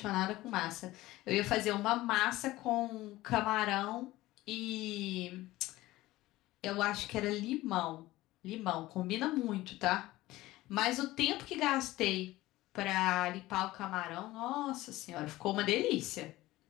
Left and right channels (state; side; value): quieter; right; 17.5 dB